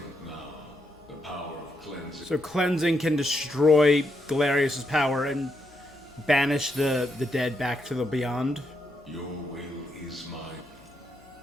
now. The power of cleansing. So cleansing can destroy Galerius' power and banish the dead back to the beyond. Your will is mine.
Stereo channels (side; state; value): both; normal; correlation 0.80